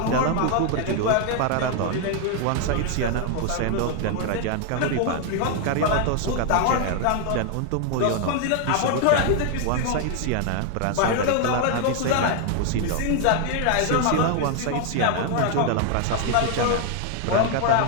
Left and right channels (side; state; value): both; different; correlation 0.00